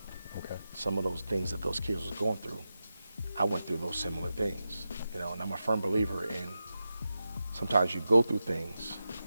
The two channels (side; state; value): both; inverted; correlation -0.91